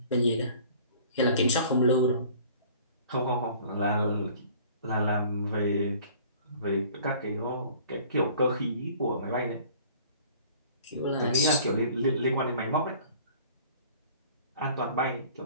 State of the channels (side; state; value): both; inverted; correlation -0.50